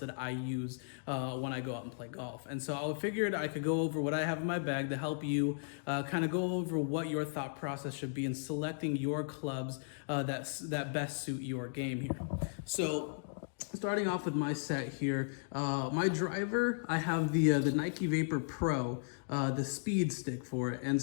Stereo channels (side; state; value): right; silent; digital silence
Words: that I use when I go out and play golf. And so I figured I could go over what I have in my bag to help you kind of go over what your thought process should be in selecting your clubs that best suit your game here. So starting off with my set here, my driver, I have the Nike Vapor Pro, the speed stick for it. And